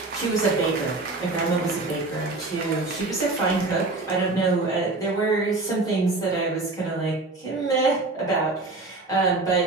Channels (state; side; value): quieter; left; 3.2 dB